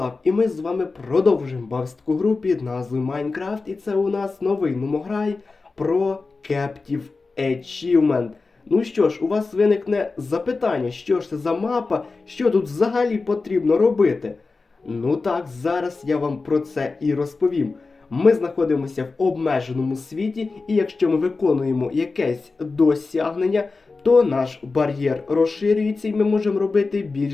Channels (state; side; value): quieter; right; 4.0 dB